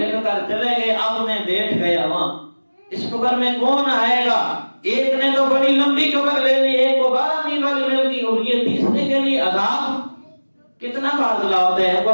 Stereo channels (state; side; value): inverted; both; correlation -1.00